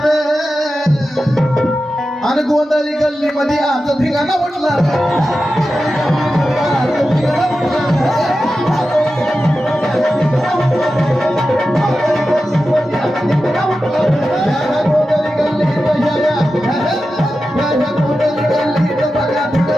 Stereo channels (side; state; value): both; normal; correlation 0.92